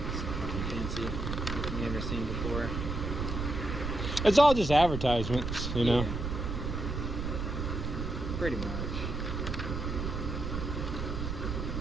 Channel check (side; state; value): right; noise; rumble, 3 dB below the sound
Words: Nothing fancy. Nothing you've never seen before. It's all just advertisements, you know. Yeah. Pretty much.